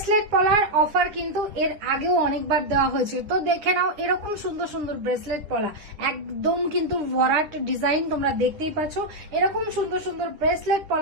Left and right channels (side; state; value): left; late; 10 ms